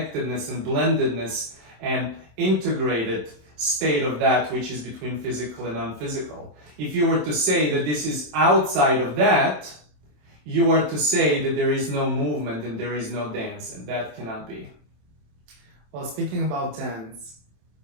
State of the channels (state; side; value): late; left; 27 ms